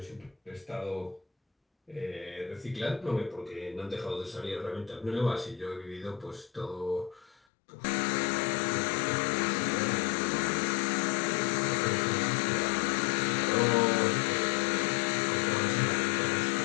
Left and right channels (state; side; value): drops out; right; at 7.4 s